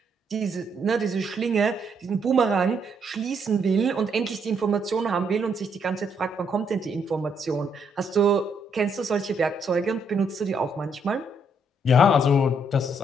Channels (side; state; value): both; normal; correlation 0.72